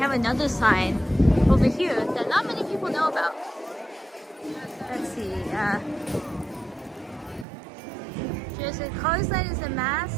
another sign over here that not many people know about. Let's see. There's a Cars Land is a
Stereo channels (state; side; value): drops out; left; at 7.5 s